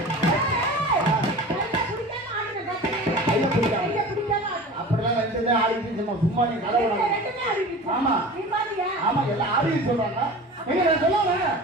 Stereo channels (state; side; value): normal; both; correlation 0.37